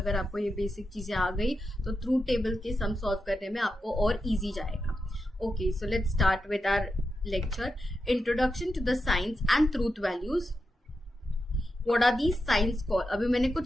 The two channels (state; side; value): normal; both; correlation 0.88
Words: आपको ये बेसिक चीज़ें आ गई तो ट्रूथ टेबल के सम सॉल्व करने में आपको और ईजी जाएगा। Okay, so let's start with our lecture, introduction to the signs and truth values. What are the signs call. अभी मैंने कुछ